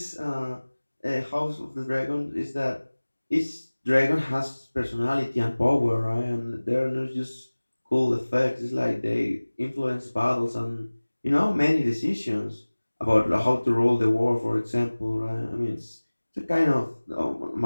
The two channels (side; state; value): both; inverted; correlation -1.00